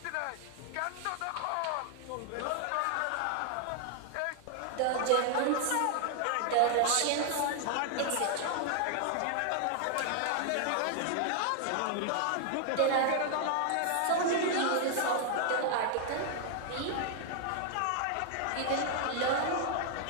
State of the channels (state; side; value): different; both; correlation 0.00